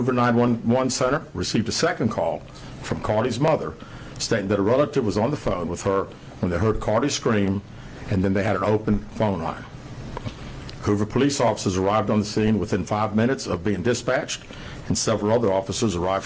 911 Center received a second call from Carlee's mother stating that a relative was on the phone with her when they heard Carlee scream, and then they had an open phone line. Hoover police officers arrived on the scene within 5 minutes of being dispatched, and several other officers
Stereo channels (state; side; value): identical; both; correlation 1.00